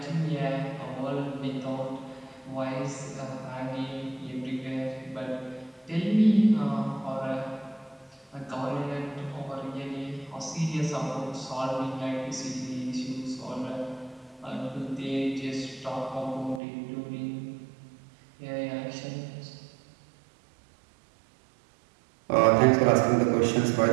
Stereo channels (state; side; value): drops out; left; at 16.6 s